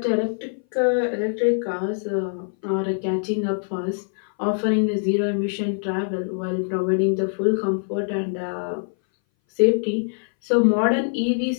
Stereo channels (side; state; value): right; silent; 60 dB below the other